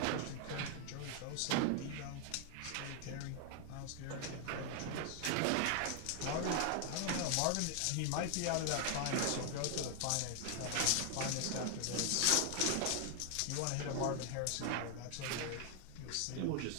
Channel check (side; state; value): both; different; correlation 0.00